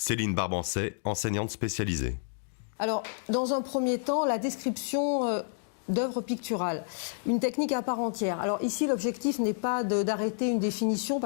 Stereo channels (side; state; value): right; silent; digital silence